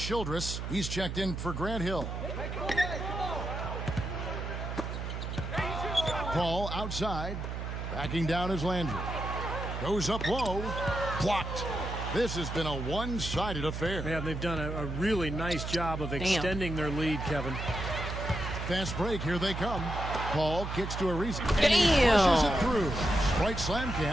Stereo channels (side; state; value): right; noise; hum, 5 dB below the sound